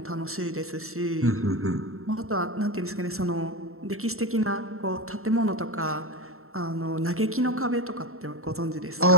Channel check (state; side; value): late; left; 0.63 ms